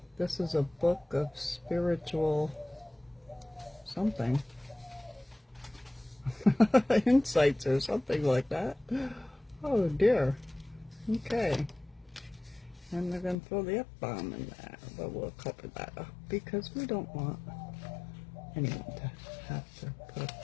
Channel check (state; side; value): drops out; right; at 13.4 s